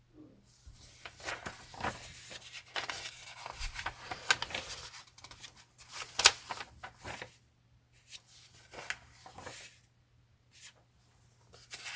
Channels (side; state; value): both; identical; correlation 1.00